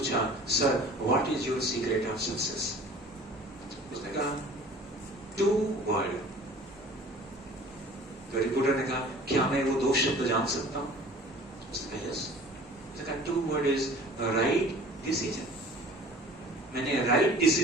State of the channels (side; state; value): both; normal; correlation 0.47